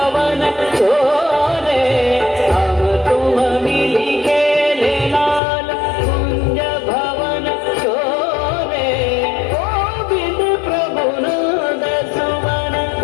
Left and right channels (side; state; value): right; drops out; at 5.4 s